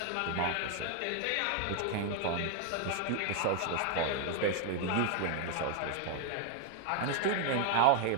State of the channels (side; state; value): both; different; correlation 0.00